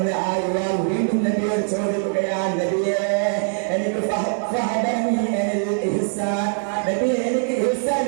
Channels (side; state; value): left; silent; 64 dB below the other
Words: ആ യുവാവ് വീണ്ടും നബിയോട് ചോദിക്കുകയാണ്, നബിയെ എനിക്ക് എനിക്ക് ഇഹ്സാൻ